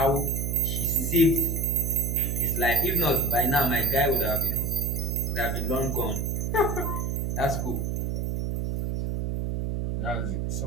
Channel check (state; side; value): noise; right; hum, 1 dB below the sound